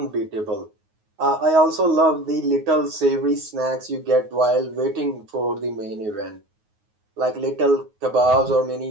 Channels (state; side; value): late; left; 9.5 ms